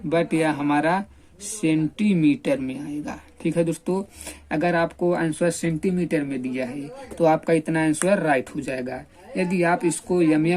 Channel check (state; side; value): identical; both; correlation 1.00